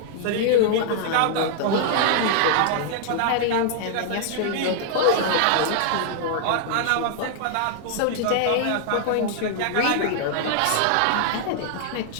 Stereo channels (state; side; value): different; both; correlation -0.01